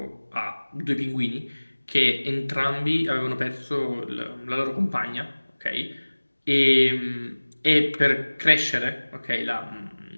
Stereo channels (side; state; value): both; inverted; correlation -1.00